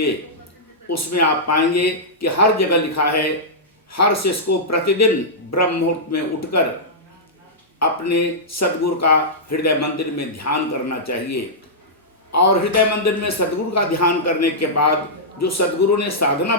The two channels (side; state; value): both; normal; correlation -0.12